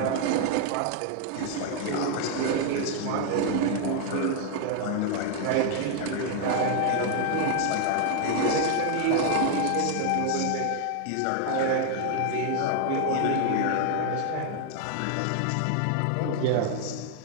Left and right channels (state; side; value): different; both; correlation 0.00